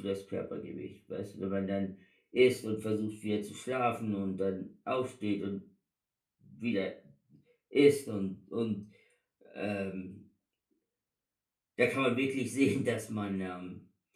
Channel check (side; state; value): both; identical; correlation 1.00